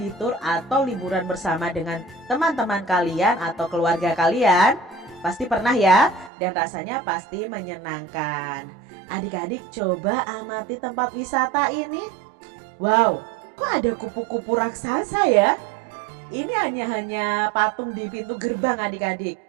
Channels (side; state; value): left; drops out; at 6.3 s